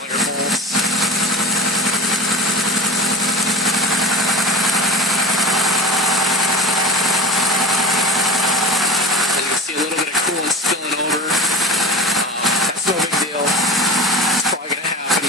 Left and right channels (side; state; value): both; normal; correlation 0.36